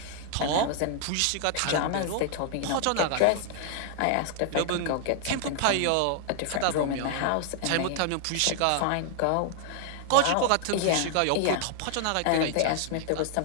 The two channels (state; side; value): different; both; correlation 0.00